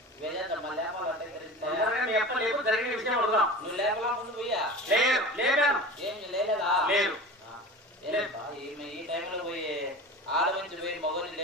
వేజేద్దమ్మా. లేపాలంటే జరిగిన విషయం అడుగుదాం. నువ్వు లేపలా ముందు పోయా? లేదు, లేపాను. ఏం లేలేదా? లేదు. ఈ టైంలో పోయి ఆడమంచి పోయి మగోని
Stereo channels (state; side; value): normal; both; correlation 0.34